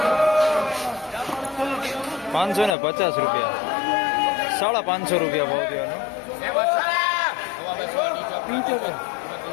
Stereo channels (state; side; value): drops out; right; at 2.8 s